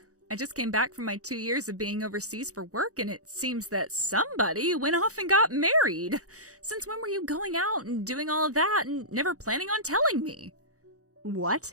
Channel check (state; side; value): late; left; 0.66 ms